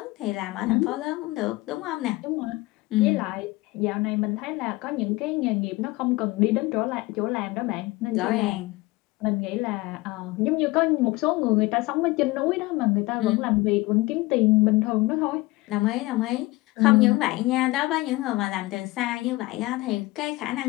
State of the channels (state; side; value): quieter; right; 20.9 dB